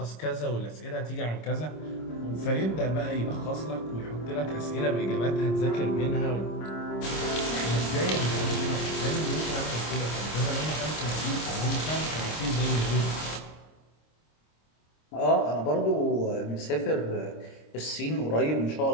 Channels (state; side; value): late; right; 26 ms